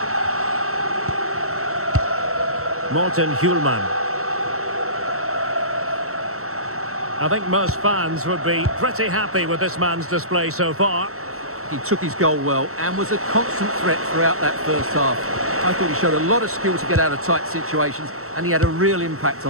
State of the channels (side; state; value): left; late; 0.63 ms